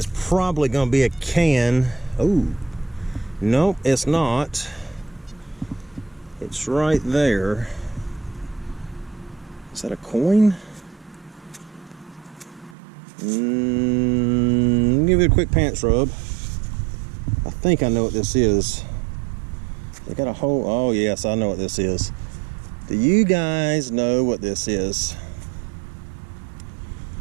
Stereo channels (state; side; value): drops out; left; at 12.8 s